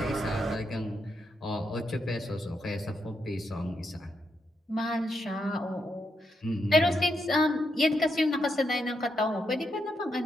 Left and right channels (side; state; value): both; normal; correlation 0.81